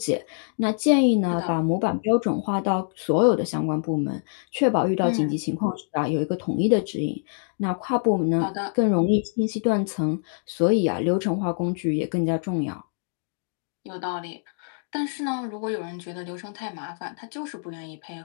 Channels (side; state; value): right; silent; digital silence